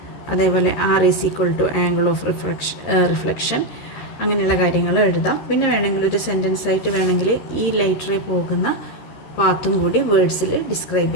അതേപോലെ R is equal to angle of reflection, അങ്ങനെയുള്ള കാര്യങ്ങൾ എഴുതാം. പിന്നെ വേണമെങ്കിൽ ഒരു സെൻറ്റൻസ് ആയിട്ട് വേണമെങ്കിൽ ഈ ലൈറ്റ് റേ പോകുന്ന പാത്തും കൂടി വേർഡ്സിൽ ഡിസ്ക്രൈബ്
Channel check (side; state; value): right; late; 13 ms